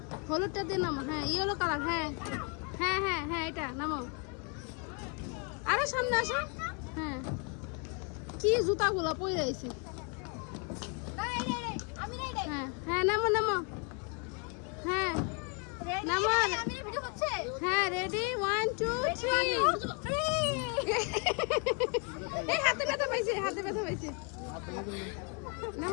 হলুদটা দিয়ে নামো। হ্যাঁ ইয়েলো কালার। হ্যাঁ হ্যাঁ হ্যাঁ হ্যাঁ এটা নামো, আরো সামনে আসো। হ্যাঁ কি জুতাগুলো পরে রয়েছে। হ্যাঁ হ্যাঁ নামো নামো। হ্যাঁ নামো। হ্যাঁ রেডি 1 2 3। এই হাতে ব্যথা পাইছে, হাতে ব্যথা পাইছে।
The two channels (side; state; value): right; quieter; 34.1 dB